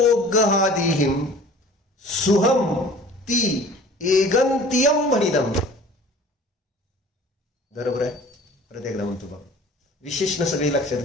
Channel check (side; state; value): both; normal; correlation 0.46